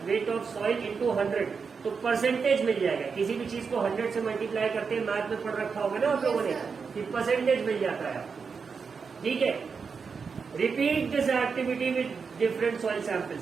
weight of soil into 100, तो परसेंटेज मिल जाएगा। किसी भी चीज को 100 से मल्टीप्लाई करते हैं, मैथ में पढ़ रखा होगा ना आप लोगों ने कि परसेंटेज मिल जाता है, ठीक है। Repeat this activity with different soil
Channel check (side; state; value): left; quieter; 5.5 dB